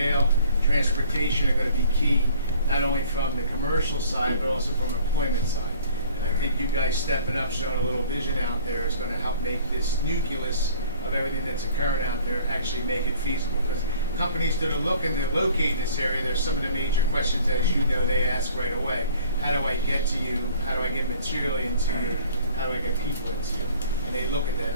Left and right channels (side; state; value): both; inverted; correlation -0.52